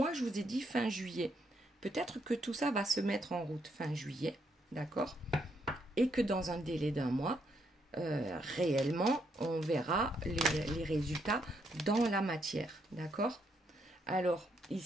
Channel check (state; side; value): normal; both; correlation 0.75